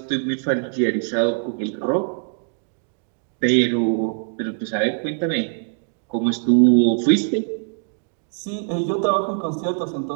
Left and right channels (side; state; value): left; silent; 64 dB below the other